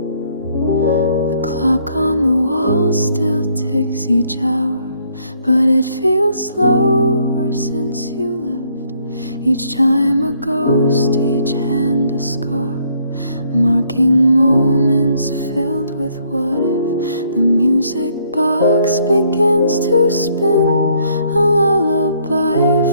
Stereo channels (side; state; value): both; inverted; correlation -0.68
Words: Still ticks each hour, but it feels slower since you left. Each time a ghost, each hand a scar, marking moments filled with what if. The music box begins to spin, a lullaby